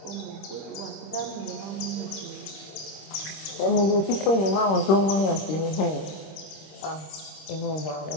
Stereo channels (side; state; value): right; late; 26 ms